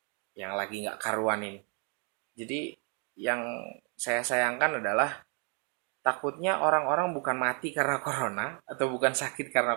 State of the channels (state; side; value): quieter; left; 36.9 dB